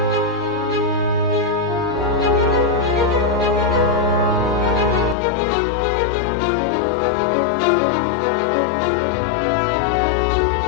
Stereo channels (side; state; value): right; drops out; at 5.2 s